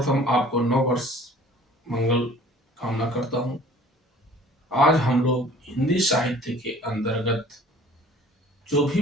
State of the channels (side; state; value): both; normal; correlation 0.50